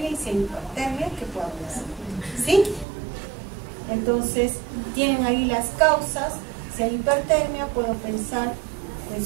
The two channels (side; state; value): left; drops out; at 2.9 s